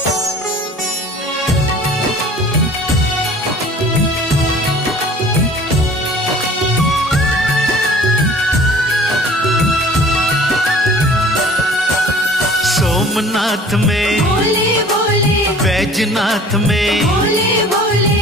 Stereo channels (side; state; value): both; normal; correlation 0.48